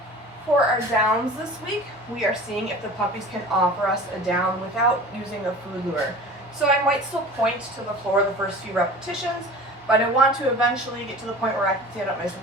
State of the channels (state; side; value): normal; both; correlation 0.39